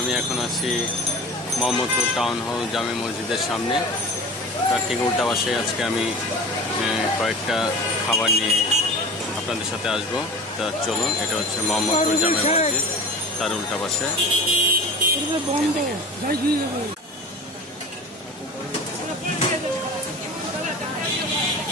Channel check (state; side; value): normal; both; correlation 0.34